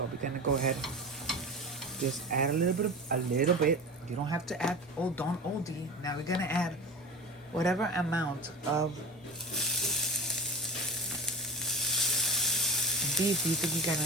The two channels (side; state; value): both; normal; correlation 0.30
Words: we're gonna go ahead, just add a little bit. You don't have to add, oh, don't OD. Now we're gonna add whatever amount of beef you think you're